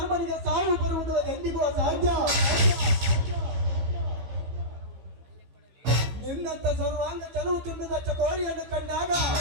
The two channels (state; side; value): late; left; 15 ms